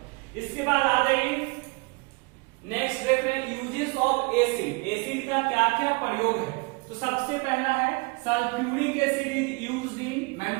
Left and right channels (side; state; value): left; quieter; 28.3 dB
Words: इसके बाद आ जाइए नेक्स्ट देख रहे हैं यूजेस ऑफ एसिड। एसिड का क्या क्या प्रयोग है, तो सबसे पहला है sulphuric acid is used in